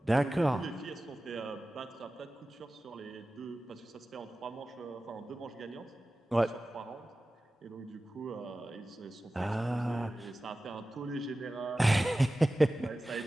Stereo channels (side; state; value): both; normal; correlation 0.96